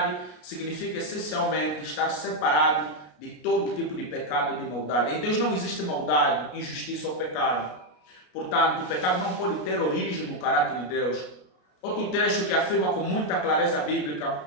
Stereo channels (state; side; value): late; right; 33 ms